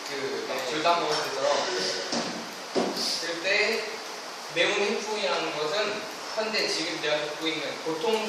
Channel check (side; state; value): both; identical; correlation 1.00